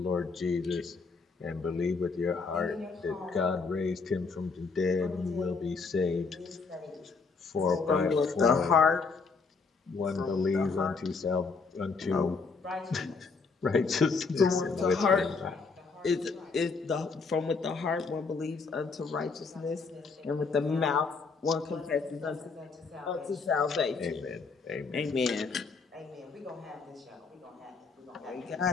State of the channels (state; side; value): quieter; right; 4.6 dB